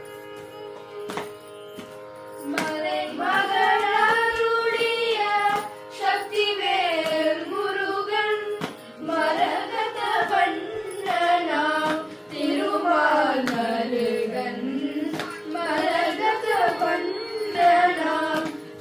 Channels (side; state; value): both; identical; correlation 1.00